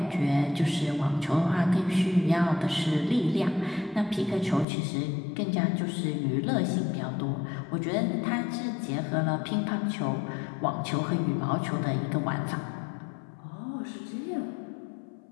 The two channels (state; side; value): drops out; right; at 4.7 s